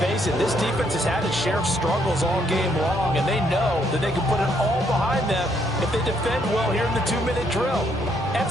it, this defense has had its share of struggles all game long, and they know that they can put it all behind them if they defend well here in the 2-minute drill.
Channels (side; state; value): both; normal; correlation 0.71